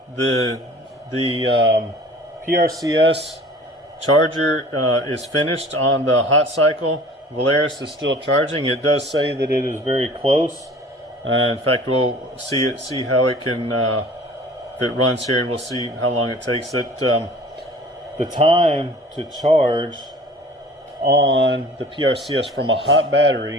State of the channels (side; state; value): both; normal; correlation 0.46